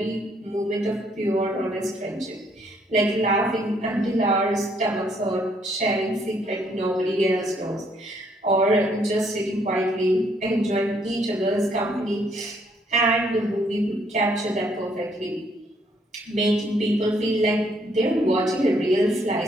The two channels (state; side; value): normal; both; correlation 0.68